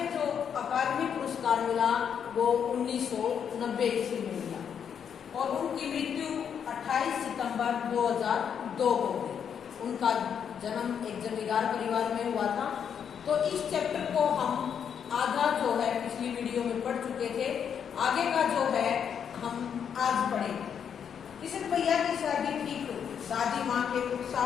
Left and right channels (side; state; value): right; quieter; 7.8 dB